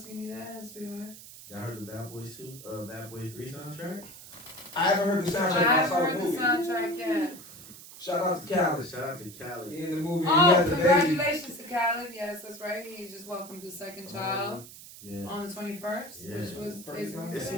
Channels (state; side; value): noise; right; hiss, 16 dB below the sound